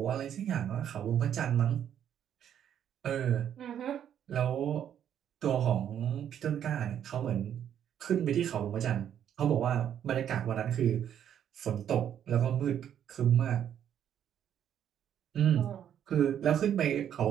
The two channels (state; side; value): quieter; left; 9.7 dB